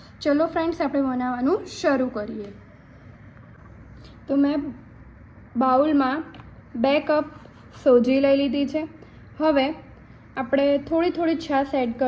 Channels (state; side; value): identical; both; correlation 1.00